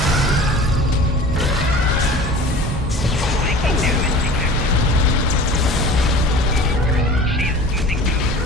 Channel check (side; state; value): both; normal; correlation 0.41